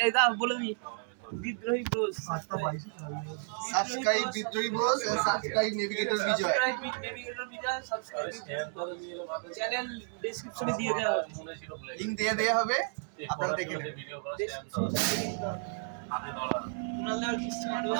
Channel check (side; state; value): left; silent; 56 dB below the other